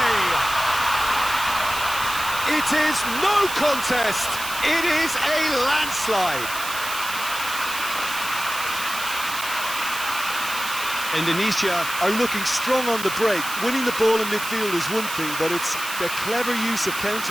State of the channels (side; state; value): right; noise; hiss, 8 dB below the sound